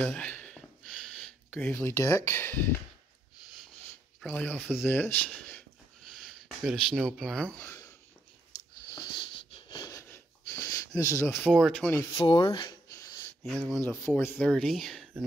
a gravely deck, probably off of this. Got a snow plow. This is a 424, the other one's a 430,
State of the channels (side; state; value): both; normal; correlation 0.75